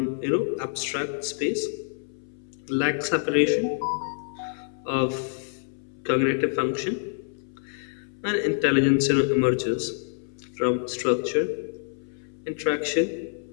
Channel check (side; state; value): right; silent; 60 dB below the other